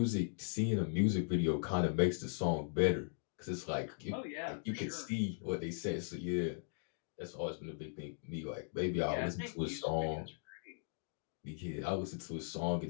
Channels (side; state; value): right; silent; digital silence